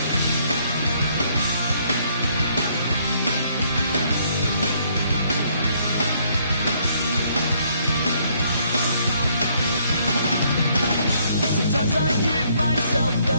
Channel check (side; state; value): both; inverted; correlation -0.68